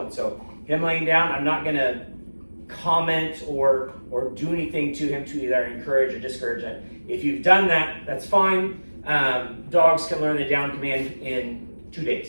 So him laying down, I'm not going to comment or do anything to him to either encourage or discourage it. If you've done that, that's fine. Dogs can learn the down command in 2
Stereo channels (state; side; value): inverted; both; correlation -1.00